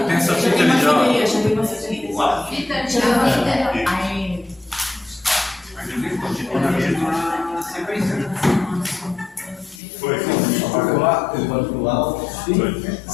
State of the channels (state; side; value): drops out; right; at 9.8 s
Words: Tem essa fita ali já. Foi.